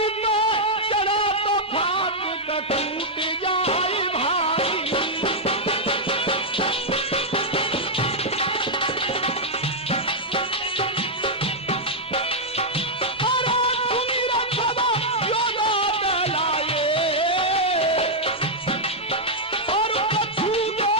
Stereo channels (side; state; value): both; normal; correlation -0.04